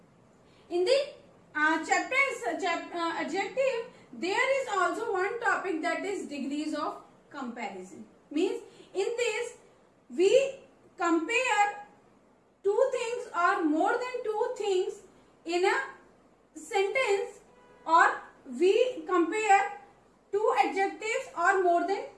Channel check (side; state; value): both; identical; correlation 1.00